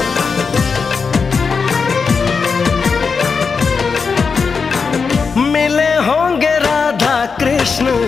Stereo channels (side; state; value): right; quieter; 5.2 dB